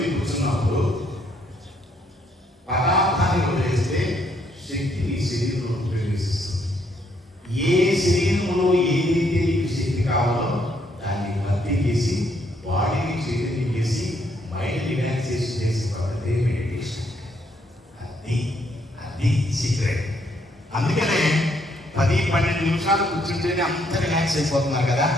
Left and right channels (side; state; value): both; normal; correlation 0.71